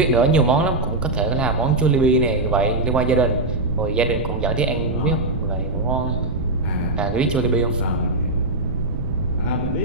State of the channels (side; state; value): right; noise; rumble, 4 dB below the sound